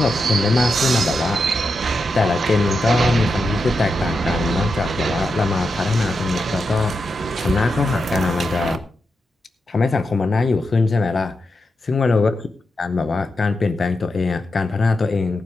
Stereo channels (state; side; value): normal; both; correlation 0.87